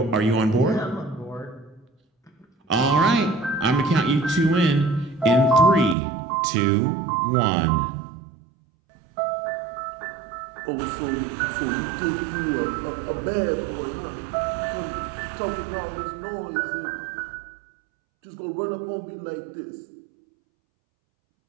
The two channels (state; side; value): drops out; left; at 6.0 s